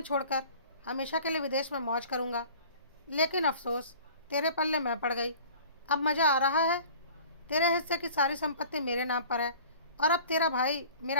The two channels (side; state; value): both; inverted; correlation -0.46